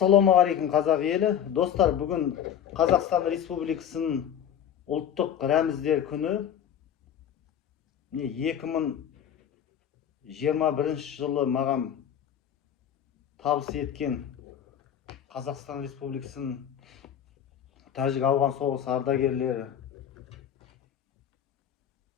қазақ елі. Достар, бүгін Қазақстан Республикасының ұлттық рәміздер күні. 2021 жылы маған табыс еткен Қазақстан Республикасының Тәжік-Ауған соғысы ардагерлері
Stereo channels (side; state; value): right; quieter; 9.4 dB